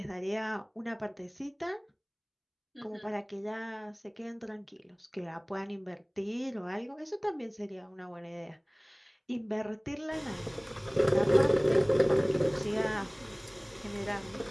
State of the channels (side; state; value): both; identical; correlation 1.00